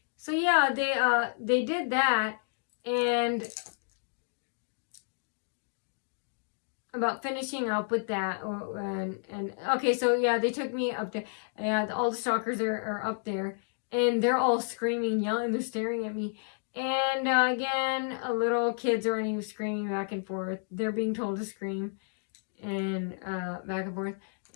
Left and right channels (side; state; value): right; silent; digital silence